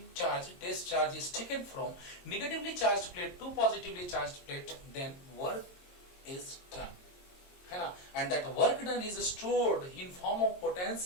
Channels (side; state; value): right; late; 22 ms